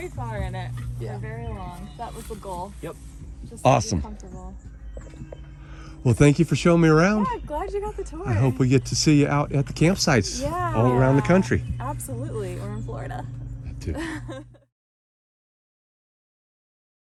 far in it. Yeah. For very long. That was the goal. Yep. Just Awesome. To be comfortable. Well, thank you for showing me around. Yeah, glad you got the tour. I hope we get to see you out at the campsites all around the country. Absolutely, or in Florida. Too.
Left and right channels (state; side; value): identical; both; correlation 1.00